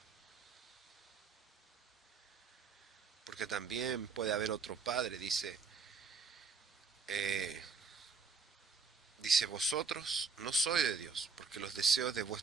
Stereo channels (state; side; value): quieter; left; 4.9 dB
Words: Porque también puede haber otro Padre, dice, vosotros no sois de Dios, porque los deseos de